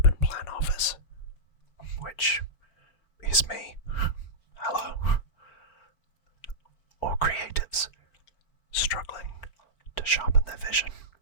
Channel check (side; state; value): right; late; 4.4 ms